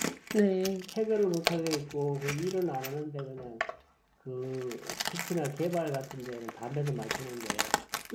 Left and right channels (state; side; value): identical; both; correlation 1.00